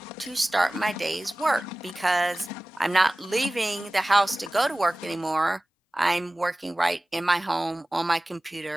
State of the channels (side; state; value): both; normal; correlation 0.98